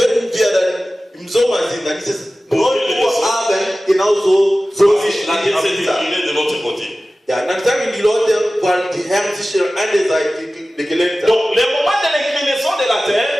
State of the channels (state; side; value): normal; both; correlation 0.96